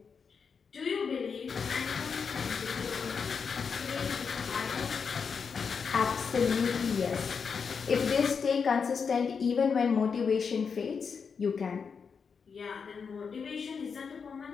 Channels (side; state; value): right; quieter; 5.9 dB